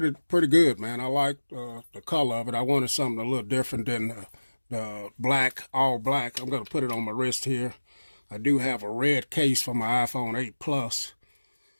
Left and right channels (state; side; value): inverted; both; correlation -1.00